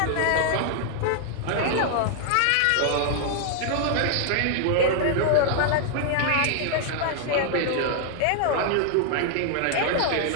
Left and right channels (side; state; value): both; different; correlation 0.00